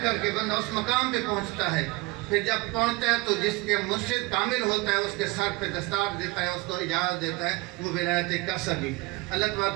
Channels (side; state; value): left; quieter; 22.7 dB